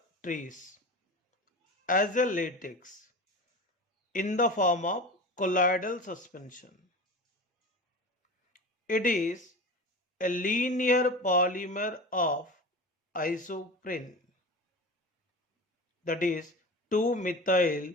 trees as a latex in the form of colloidal suspension. It is a linear polymer of isoprene, that is 2-methyl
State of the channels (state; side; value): normal; both; correlation 0.31